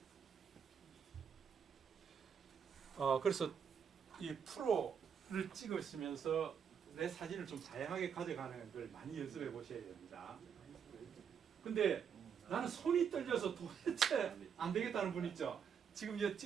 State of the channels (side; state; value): left; quieter; 7.3 dB